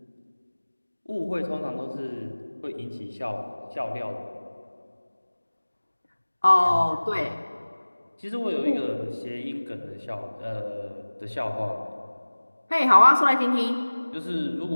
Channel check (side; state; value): both; inverted; correlation -1.00